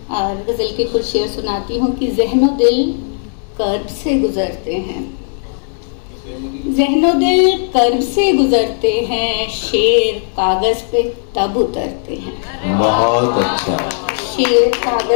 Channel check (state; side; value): silent; right; digital silence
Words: और गजल के कुछ शेर सुनाती हूँ कि ज़हनो दिल कर्ब से गुजरते हैं, ज़हनो दिल कर्ब से गुजरते हैं, शेर कागज पे तब उतरते हैं। बहुत अच्छा। शेर